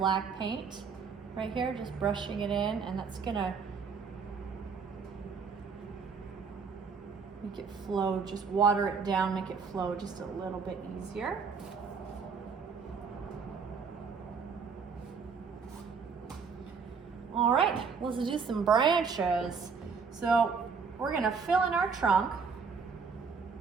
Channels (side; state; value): left; quieter; 5.5 dB